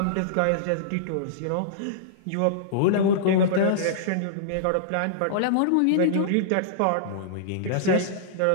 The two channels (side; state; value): both; different; correlation -0.03